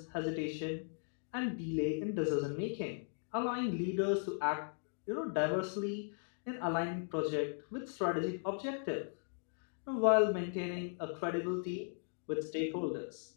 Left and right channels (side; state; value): right; silent; digital silence